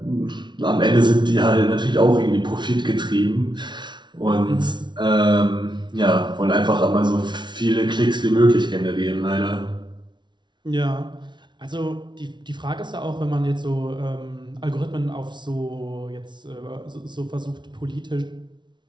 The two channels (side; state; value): left; late; 0.22 ms